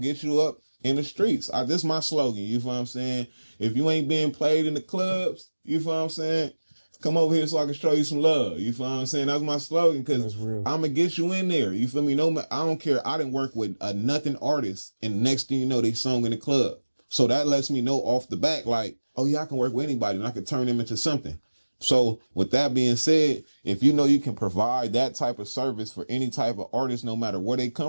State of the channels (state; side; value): inverted; both; correlation -1.00